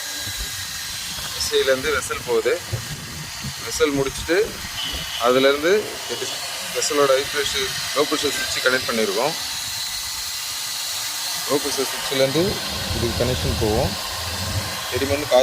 எஸ்விலேருந்து வெசல் போகுது. வெசல் முடிச்சுட்டு அதுலேருந்து வெசலோட லோ ப்ரெஷர் சுவிட்சு கனெக்ட் பண்ணியிருக்கோம். லோ ப்ரெஷர் சுவிட்சிலேருந்து இதுக்கு கனெக்ஷன் போவோம். செடிமண்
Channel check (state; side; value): identical; both; correlation 1.00